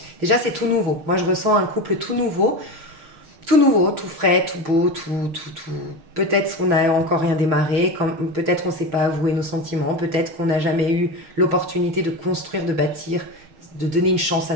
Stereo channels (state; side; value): late; left; 6.1 ms